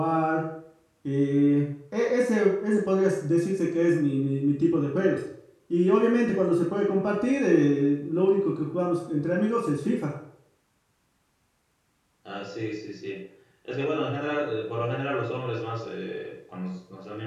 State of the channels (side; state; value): both; identical; correlation 1.00